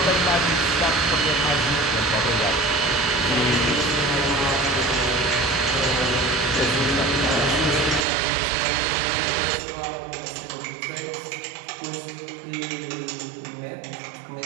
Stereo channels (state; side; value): drops out; left; at 8.1 s